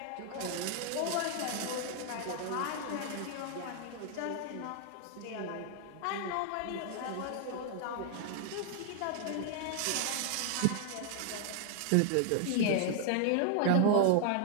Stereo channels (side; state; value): both; different; correlation 0.00